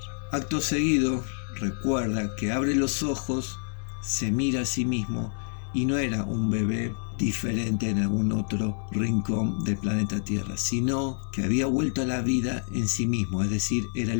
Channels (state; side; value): silent; right; digital silence